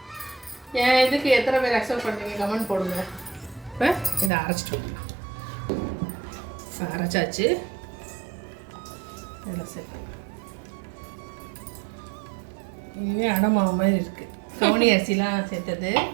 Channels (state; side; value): drops out; left; at 4.3 s